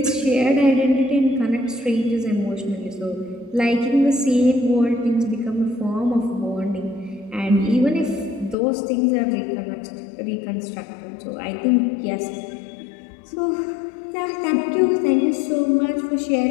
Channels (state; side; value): drops out; right; at 8.6 s